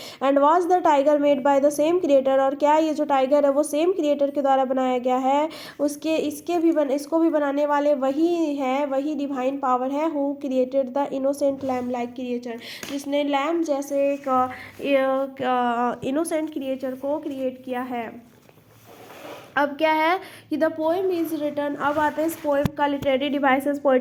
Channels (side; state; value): both; identical; correlation 1.00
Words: and was the tiger made by the same creator, और क्या ये जो टाइगर है वो सेम क्रिएटर के द्वारा बनाया गया है। इसको भी बनाने वाले वही है, वही डिवाइन पावर है, who created the innocent lamb like creature, जिसने लैम जैसे एक इनोसेंट क्रिएचर को क्रिएट किया है। अब क्या है कि द पोएम इज रिटन, अब आते हैं इस पोएम का literary devices,